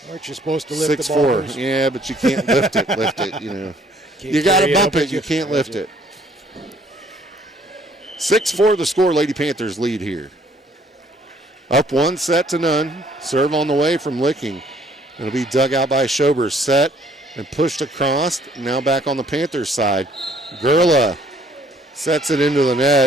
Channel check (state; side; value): normal; both; correlation 0.61